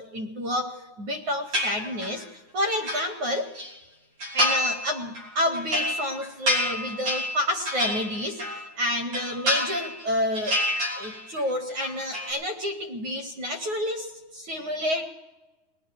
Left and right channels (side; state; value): left; late; 9.5 ms